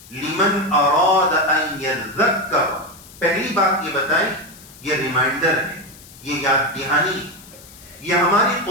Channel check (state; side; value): noise; left; hiss, 21 dB below the sound